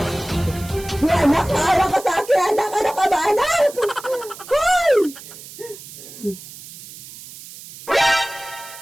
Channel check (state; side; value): noise; right; hiss, 16 dB below the sound